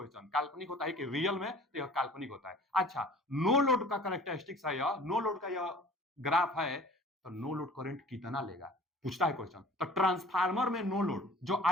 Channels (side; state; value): both; normal; correlation 0.47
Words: काल्पनिक होता है कि रियल में, तो यह काल्पनिक होता है। अच्छा, नो लोड का कैरेक्टरिस्टिक्स है यह, नो लोड का यह ग्राफ है, तो नो लोड करंट कितना लेगा, पूछता है क्वेश्चन। तो ट्रांसफार्मर में नो लोड, जो